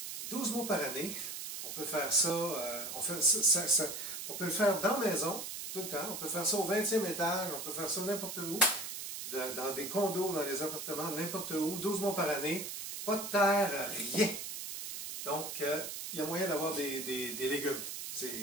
12 mois par année. On peut faire ça, on peut le faire dans la maison, tout le temps. On peut faire ça au 20e étage, on peut faire ça n'importe où, dans des condos, dans les appartements, n'importe où, 12 mois par année. Pas de terre, rien. Donc, il y a moyen d'avoir des légumes.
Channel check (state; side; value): noise; right; hiss, 7 dB below the sound